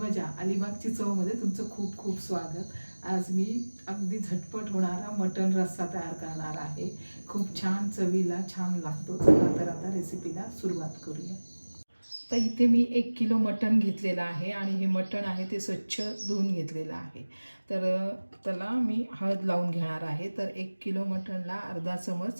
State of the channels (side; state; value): both; inverted; correlation -1.00